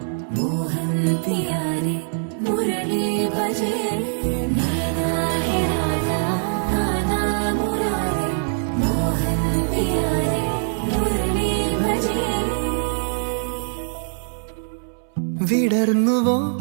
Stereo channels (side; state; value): left; silent; 64 dB below the other